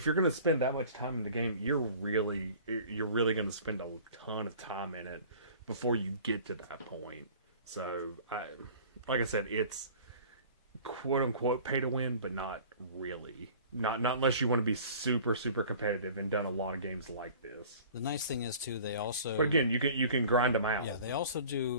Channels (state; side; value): inverted; both; correlation -0.46